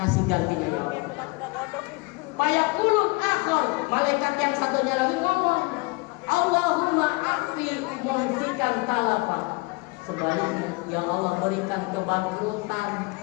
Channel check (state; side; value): quieter; right; 26.2 dB